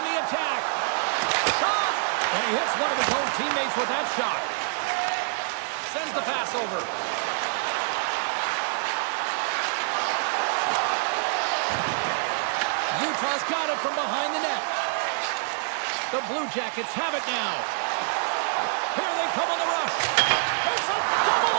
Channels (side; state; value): left; silent; 60 dB below the other